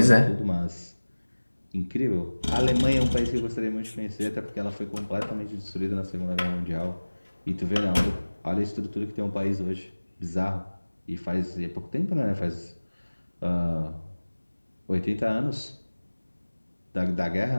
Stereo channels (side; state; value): both; inverted; correlation -1.00